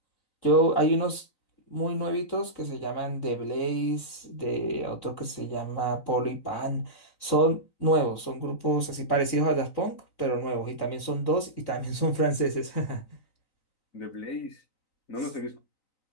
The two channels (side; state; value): right; late; 3.9 ms